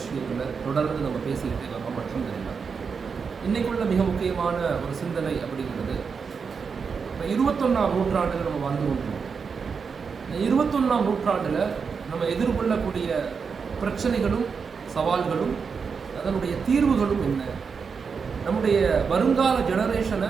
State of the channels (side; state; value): left; quieter; 5.7 dB